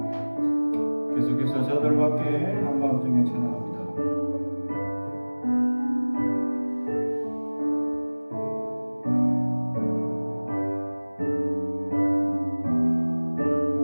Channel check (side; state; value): both; inverted; correlation -1.00